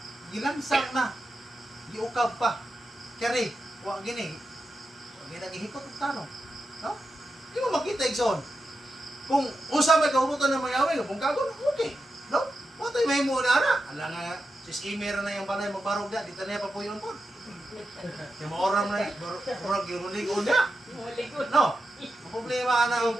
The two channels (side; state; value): both; normal; correlation 0.89